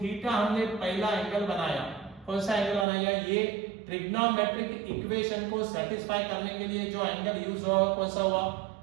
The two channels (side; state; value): left; drops out; at 2.9 s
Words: हमने पहला एंगल बनाया, कौन सा एंगल बनाया, ये ट्रिग्नोमेट्रिक इक्वेशन को सेटिस्फाई करने के लिए जो एंगल यूज हुआ कौन सा हुआ,